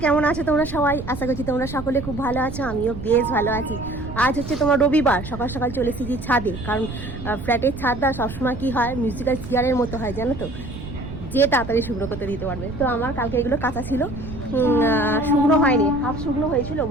কেমন আছো তোমরা সবাই? আশা করছি তোমরা সকলে খুব ভালো আছো, আমিও বেশ ভালো আছি। আজ হচ্ছে তোমার রবিবার, সকাল সকাল চলে এসেছি ছাদে, কারণ ফ্ল্যাটের ছাদটা সবসময় কী হয়, মিউজিক্যাল চেয়ারের মতো হয় জানো তো, যে তাড়াতাড়ি শুকনো করতে দিতে পারবে। তো আমার কালকে এগুলো কাঁচা ছিল, শুকনো হয়নি, হাফ শুকনো হয়েছিল,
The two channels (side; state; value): right; noise; rumble, 10 dB below the sound